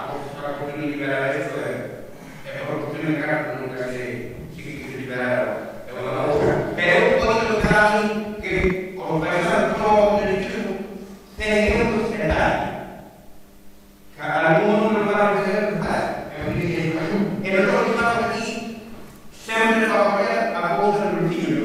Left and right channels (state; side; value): identical; both; correlation 1.00